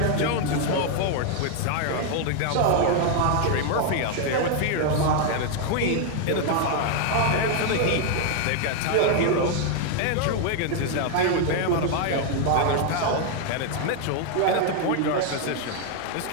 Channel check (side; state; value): both; different; correlation 0.00